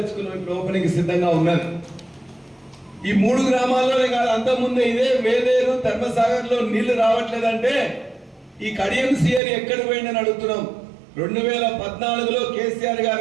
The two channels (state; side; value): drops out; left; at 9.4 s